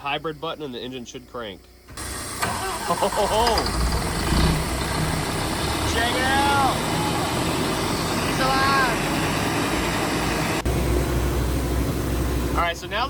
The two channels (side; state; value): both; identical; correlation 1.00